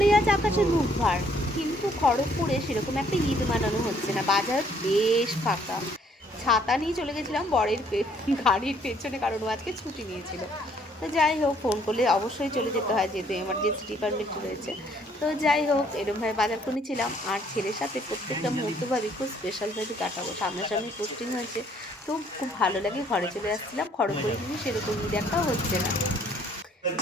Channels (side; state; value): both; normal; correlation 0.63